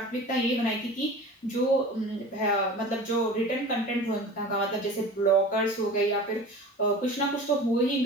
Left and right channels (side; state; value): both; normal; correlation 0.37